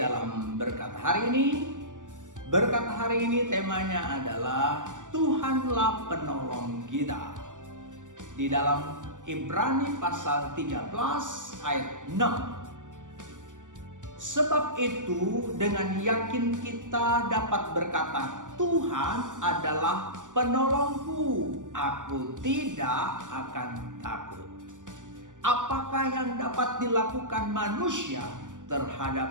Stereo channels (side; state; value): left; late; 0.87 ms